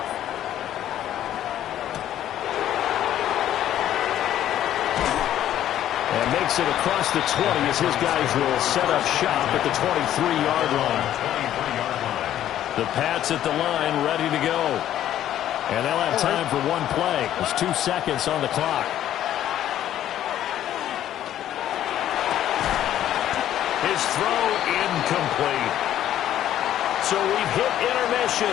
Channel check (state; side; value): quieter; right; 11.8 dB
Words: And makes it across the 20 as his guys will set up shop at the 23-yard line. The Pats at the line ready to go. And they'll have time for one play. There's 2 seconds on the clock. His throw incomplete. So we've hit intermission.